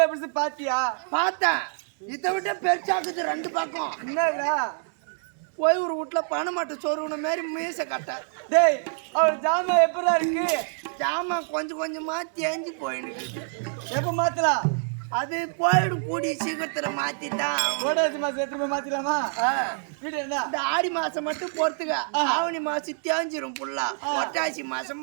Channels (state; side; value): silent; left; digital silence